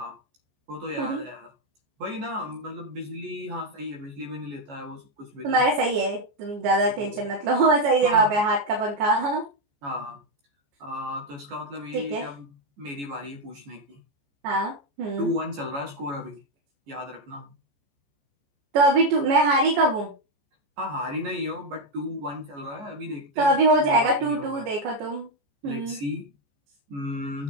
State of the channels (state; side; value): late; left; 14 ms